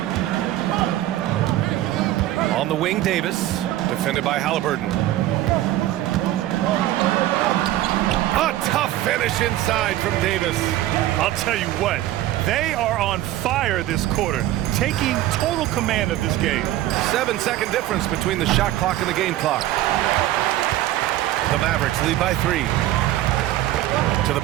On the wing, Davis, defended by Halliburton. A tough finish inside from Davis. I'll tell you what, they are on fire this quarter, taking total command of this game. 7-second difference between the shot clock and the game clock. The Mavericks lead by 3. To the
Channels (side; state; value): left; quieter; 14.5 dB